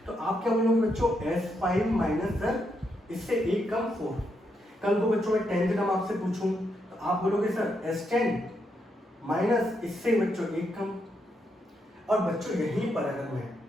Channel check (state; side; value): normal; both; correlation 0.80